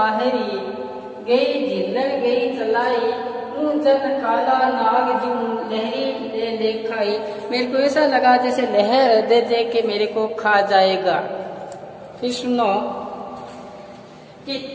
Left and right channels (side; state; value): both; identical; correlation 1.00